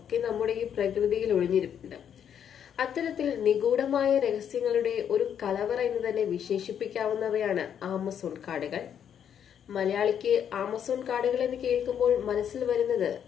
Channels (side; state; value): right; quieter; 8.7 dB